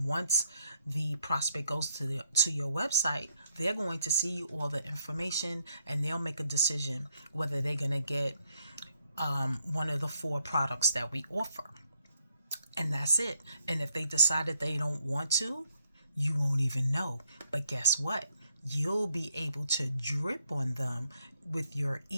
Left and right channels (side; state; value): both; inverted; correlation -0.74